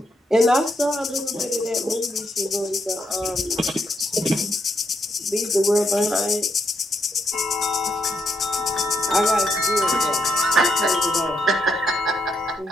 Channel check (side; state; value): both; normal; correlation 0.78